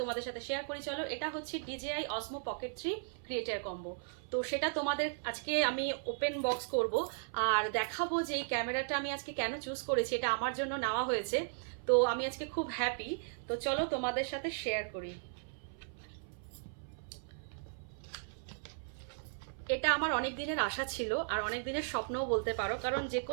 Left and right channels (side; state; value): left; silent; 54 dB below the other